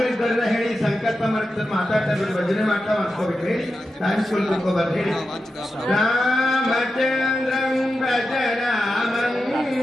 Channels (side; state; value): both; normal; correlation 0.91